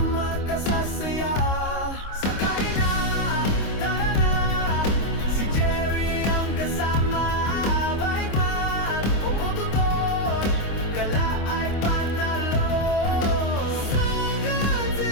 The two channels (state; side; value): late; right; 25 ms